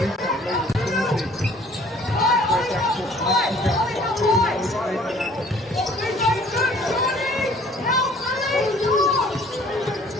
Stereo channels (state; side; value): normal; both; correlation 0.55